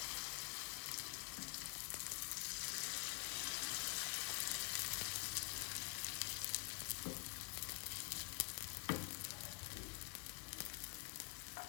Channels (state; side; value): quieter; right; 35.1 dB